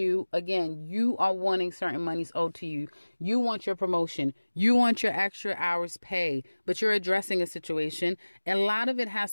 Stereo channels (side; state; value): both; inverted; correlation -1.00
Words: again, you are wanting certain monies owed to you. You want your promotion. You want your extra hours pay, but you're addressing a situation. A lot of it has